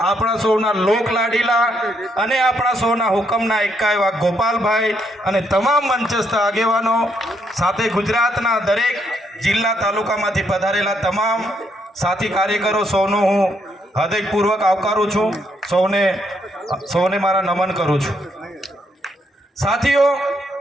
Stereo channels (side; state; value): both; normal; correlation 0.75